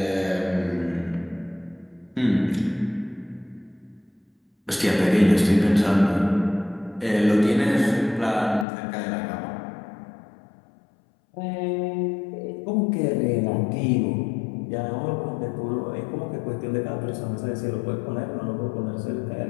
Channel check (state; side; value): drops out; right; at 8.7 s